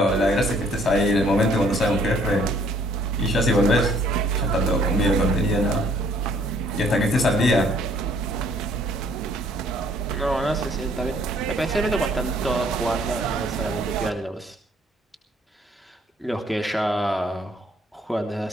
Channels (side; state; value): both; normal; correlation 0.62